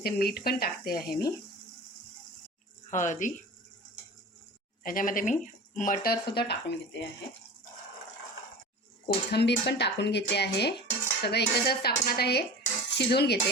मीठ पण टाकते आहे मी, हळदी. त्याच्यामध्ये मी मटरसुद्धा टाकून घेते आहे, कोथिंबीर पण टाकून घेते आहे. सगळं एकत्रच टाकून आता हे शिजवून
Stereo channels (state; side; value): normal; both; correlation 0.35